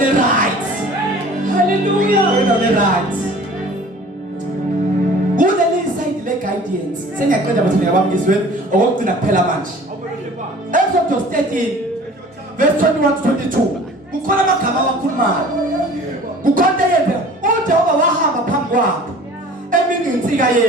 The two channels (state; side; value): normal; both; correlation 0.46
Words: right. Hallelujah. Endaweni right kuleli side le guidance sengiyaqeda bathi ngiyabamkizwe okugcina kuphela manje Exodus 13 verse 21 to 22 kukhona amagama awakhulumayo kukhona yepha uJehova wahamba phambi kwabo emini insika